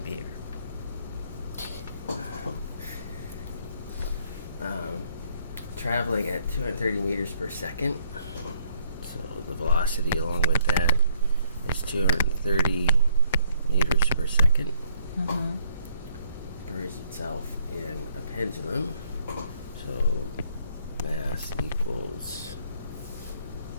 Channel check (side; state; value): both; inverted; correlation -0.67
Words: behavior. Traveling at 230 meters per second. So the velocity along with that is 230 meters per second. Buries itself in a pendulum. So mass equals